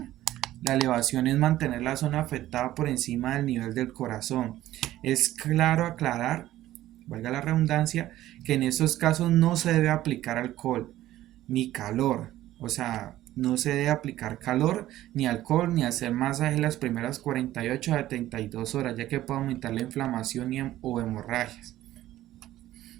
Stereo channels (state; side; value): quieter; left; 14.5 dB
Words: La elevación es mantener la zona afectada por encima del nivel del corazón. Es claro aclarar, valga la redundancia, que en estos casos no se debe aplicar alcohol ni calor. O sea, no se debe aplicar calor ni alcohol ni hacer masaje las primeras 48 a 72 horas, ya que puede aumentar la inflamación o hemorragias.